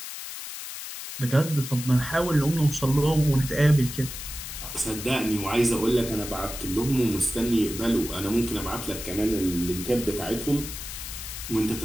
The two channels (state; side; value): noise; left; hiss, 9 dB below the sound